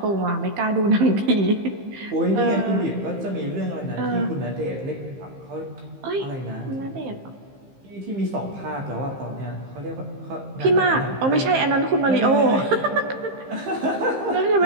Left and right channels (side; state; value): left; late; 15 ms